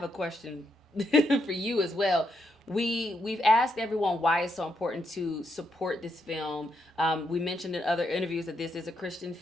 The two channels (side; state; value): both; normal; correlation 0.79